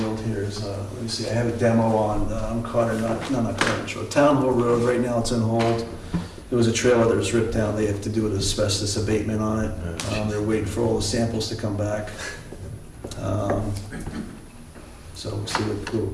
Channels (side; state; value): both; identical; correlation 1.00